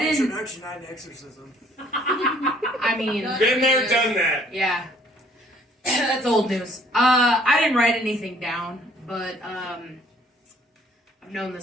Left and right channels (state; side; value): normal; both; correlation 0.60